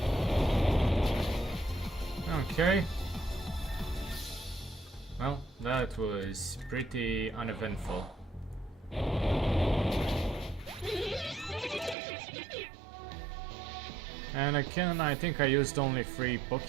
Okay. Well, that was pretty uneventful. And again, I think I used only 3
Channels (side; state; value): left; drops out; at 12.0 s